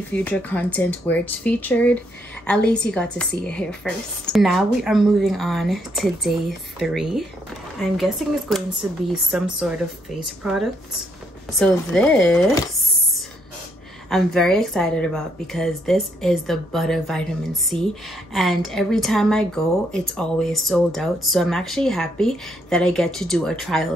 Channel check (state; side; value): normal; both; correlation 0.73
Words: future content where it's featured, at least you got to see it here first. Now we are moving on to day 3. I'm guessing it's going to be some sort of face product. So this I'm very excited about because this is the Butter Vitamin C, and every time I go it's always sold out. So I'm actually happy that I get to do a